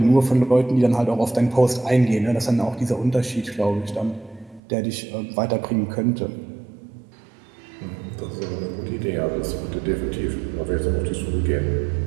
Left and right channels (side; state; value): left; drops out; at 4.6 s